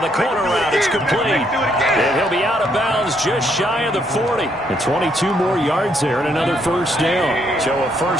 the corner route. It's complete. And he'll be out of bounds just shy of the 40. And 22 more yards there and another 1st down. So a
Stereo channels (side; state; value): both; normal; correlation 0.72